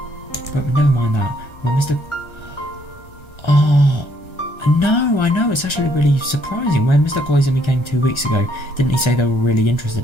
But never mind that. Well, Mr. Oh, no, I know. It's actually really surprising. When Mr. Koizumi came 2 weeks ago, didn't he say they were really interested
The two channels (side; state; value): right; late; 1.3 ms